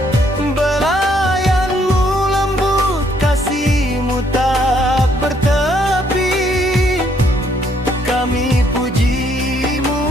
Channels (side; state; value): both; normal; correlation 0.69